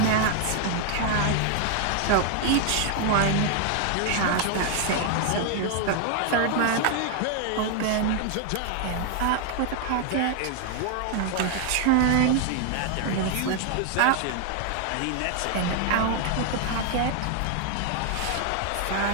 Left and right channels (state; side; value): different; both; correlation 0.00